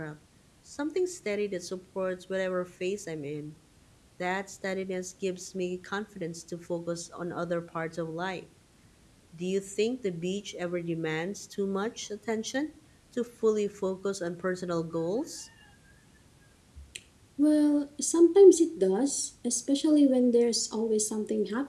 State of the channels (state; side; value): identical; both; correlation 1.00